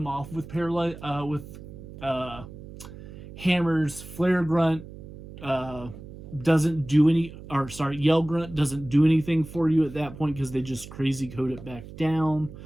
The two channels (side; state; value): right; noise; hum, 15 dB below the sound